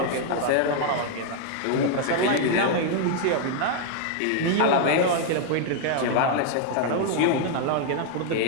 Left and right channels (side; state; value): both; different; correlation 0.00